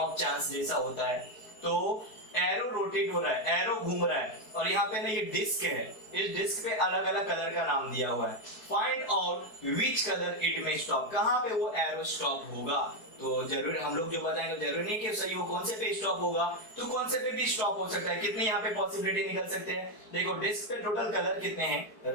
चांस जैसा होता है। तो एरो रोटेट हो रहा है, एरो घूम रहा है, और यहाँ पे ना ये डिस्क है, इस डिस्क पे अलग अलग कलर का नाम दिया हुआ है। Find out which colour it में स्टॉप, कहाँ पे वो एरो स्टॉप होगा। तो जरूर हम लोग जो बताएंगे जरूरी नहीं कि सही वो कौन से पे स्टॉप होगा, तो कौन से पे भी स्टॉप हो सकता है। कितने यहाँ पे पॉसिबिलिटी निकल सकते हैं, देखो डिस्क पे टोटल कलर कितने हैं,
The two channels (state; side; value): late; right; 4.7 ms